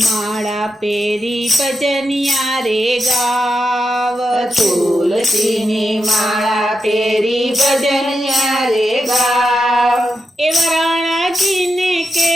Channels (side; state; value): both; normal; correlation 0.87